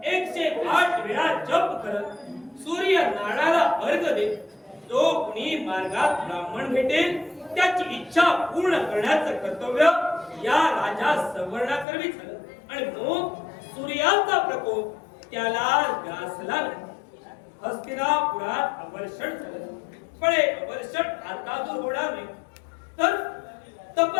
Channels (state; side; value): drops out; right; at 11.9 s